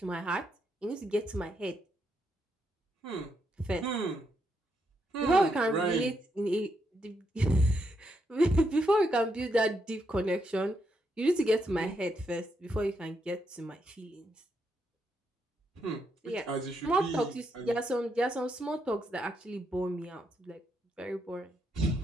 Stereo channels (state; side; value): normal; both; correlation 0.79